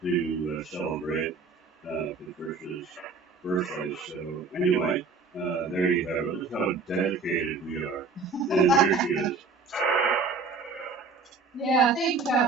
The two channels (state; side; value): quieter; left; 4.4 dB